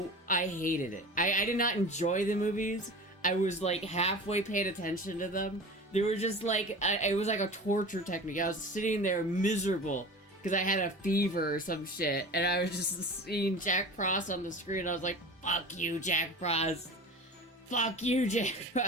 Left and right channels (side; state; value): both; normal; correlation 0.35